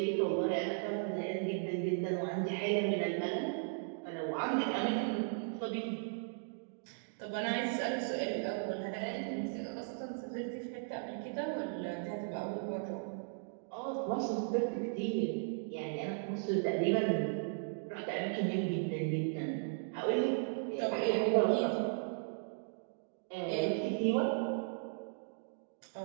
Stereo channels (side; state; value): left; silent; digital silence